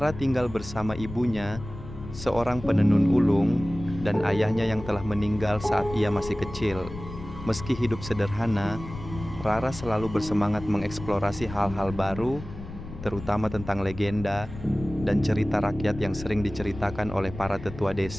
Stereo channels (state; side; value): noise; left; rumble, 12 dB below the sound